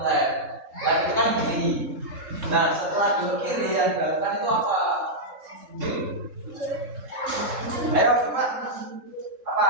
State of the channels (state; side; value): late; left; 3.7 ms